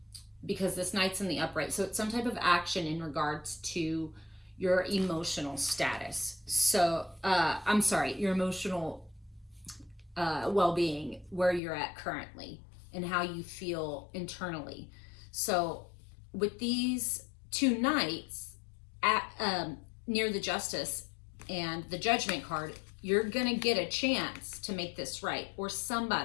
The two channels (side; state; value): right; drops out; at 11.6 s